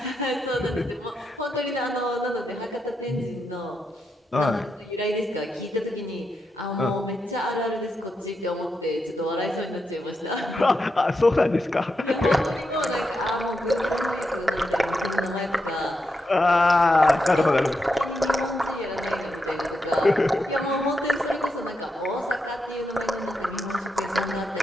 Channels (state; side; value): normal; both; correlation 0.84